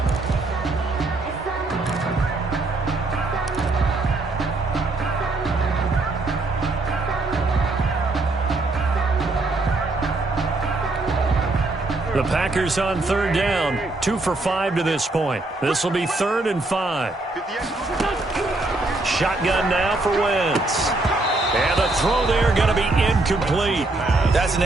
The Packers on third down, 2 for 5 to this point. This will be 3rd and 5. Shotgun now for Wentz. And the throw there going to be incomplete. That's an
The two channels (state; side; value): quieter; left; 3.1 dB